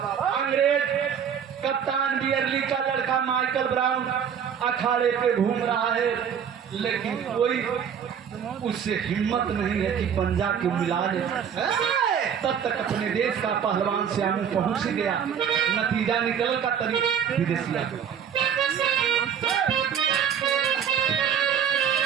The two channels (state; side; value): quieter; left; 8.0 dB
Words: कप्तान बियरली का लड़का माइकल ब्राउन अखाड़े पे घूम रहा है, लेकिन कोई उससे हिम्मत नहीं है कि पंजा के मिला ले। तब तक अपने देश का पहलवान श्यामू पहुंच ही गया। नतीजा निकल का तरीका विदेशिया